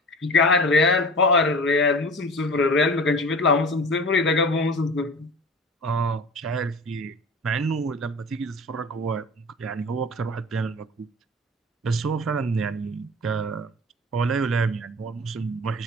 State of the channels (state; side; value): normal; both; correlation 0.38